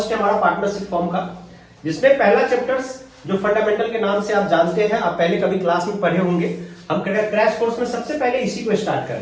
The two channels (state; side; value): identical; both; correlation 1.00